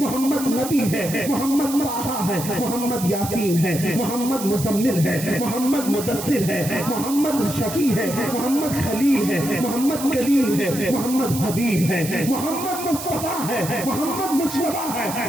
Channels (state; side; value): noise; right; hiss, 9 dB below the sound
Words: محمد نبی ہے، محمد طٰہٰ ہے، محمد یاسین ہے، محمد مزمل ہے، محمد مدثر ہے، محمد شفیع ہے، محمد خلیل ہے، محمد کلیم ہے، محمد حبیب ہے، محمد مصطفیٰ ہے، محمد مجتبیٰ ہے،